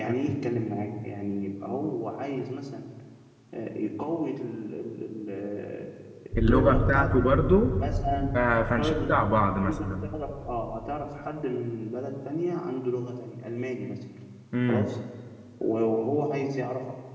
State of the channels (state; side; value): identical; both; correlation 1.00